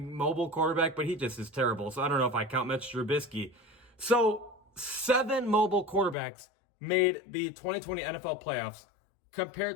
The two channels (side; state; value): right; drops out; at 6.2 s